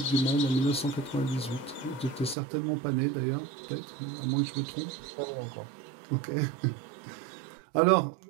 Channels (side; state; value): left; drops out; at 2.4 s